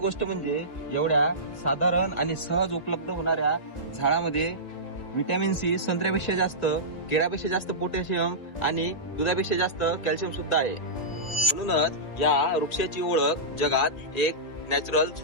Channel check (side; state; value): right; late; 1.7 ms